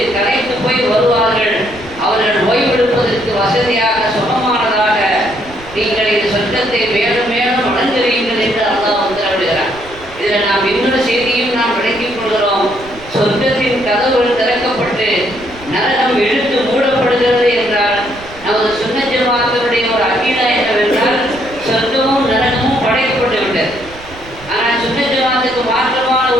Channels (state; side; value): noise; right; rumble, 19 dB below the sound